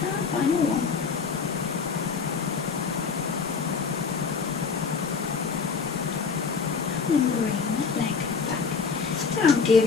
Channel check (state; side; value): quieter; right; 5.3 dB